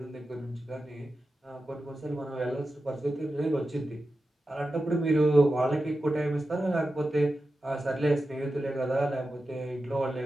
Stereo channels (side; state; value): both; normal; correlation 0.92